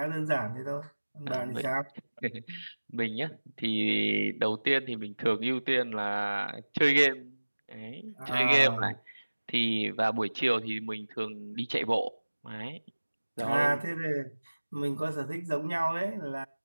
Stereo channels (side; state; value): both; inverted; correlation -1.00